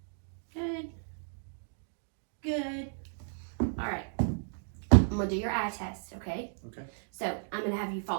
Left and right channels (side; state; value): left; silent; digital silence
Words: Good. Good. All right. I'm going to do your eye test, okay? Okay. So I'm going to have you